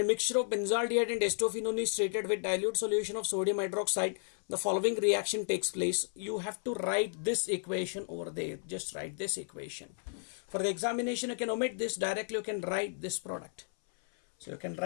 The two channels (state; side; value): silent; right; 56 dB below the other